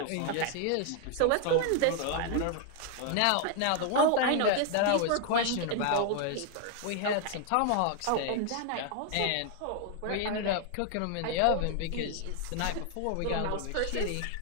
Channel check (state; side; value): different; both; correlation 0.00